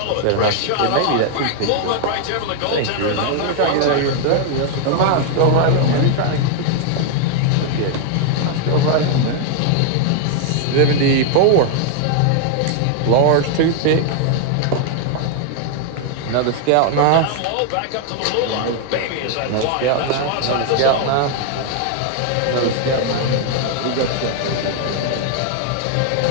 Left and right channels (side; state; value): both; different; correlation 0.00